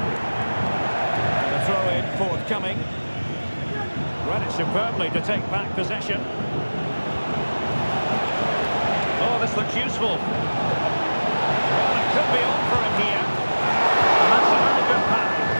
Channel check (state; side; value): inverted; both; correlation -1.00